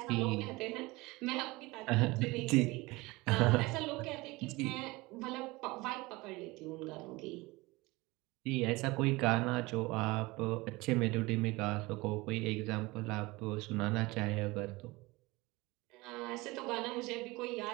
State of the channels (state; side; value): quieter; left; 22.3 dB